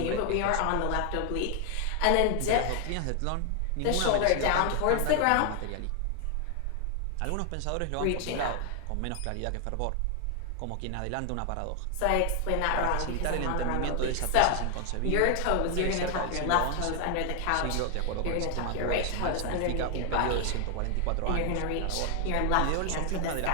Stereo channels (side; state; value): both; different; correlation 0.00